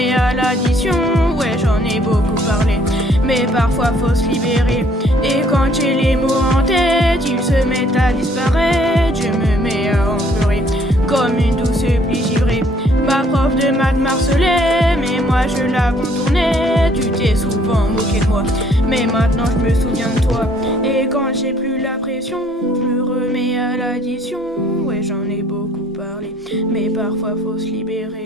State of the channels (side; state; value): both; normal; correlation 0.62